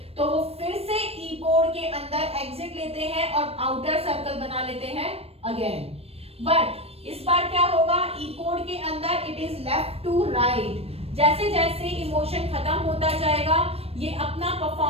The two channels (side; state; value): left; late; 0.28 ms